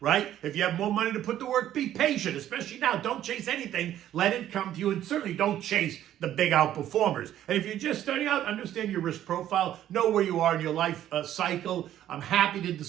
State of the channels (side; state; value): left; quieter; 11.9 dB